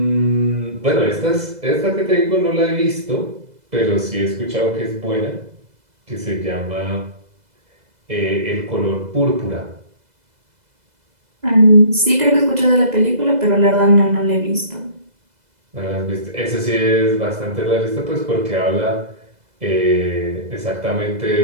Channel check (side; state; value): left; late; 2.0 ms